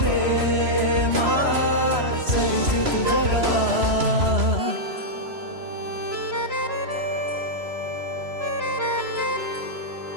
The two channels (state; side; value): late; left; 3.0 ms